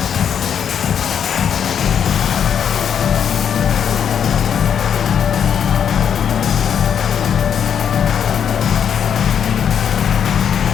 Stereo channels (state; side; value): quieter; right; 8.1 dB